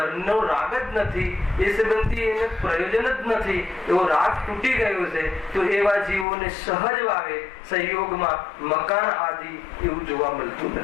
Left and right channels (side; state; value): right; drops out; at 6.2 s